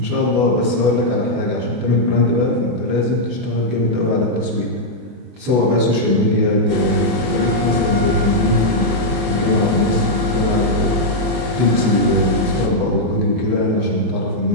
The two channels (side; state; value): left; late; 24 ms